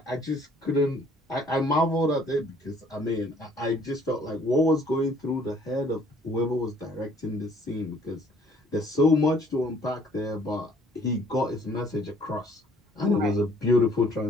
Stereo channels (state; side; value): normal; both; correlation 0.59